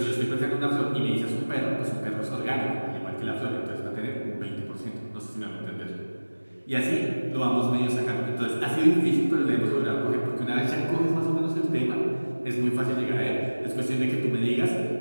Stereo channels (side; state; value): both; inverted; correlation -1.00